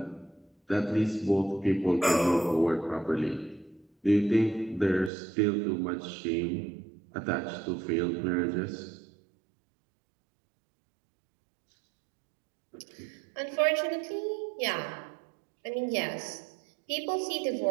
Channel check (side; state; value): left; drops out; at 5.1 s